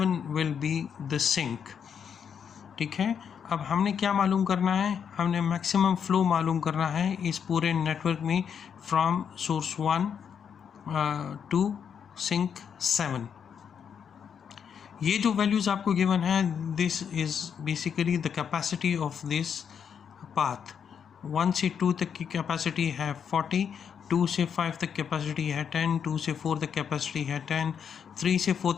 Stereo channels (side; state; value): right; quieter; 7.5 dB